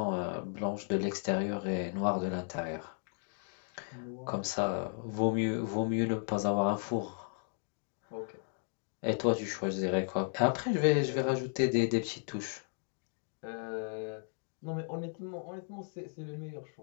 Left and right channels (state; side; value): silent; right; 54 dB below the other